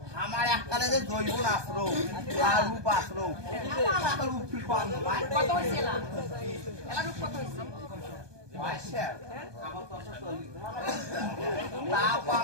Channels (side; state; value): left; late; 1.2 ms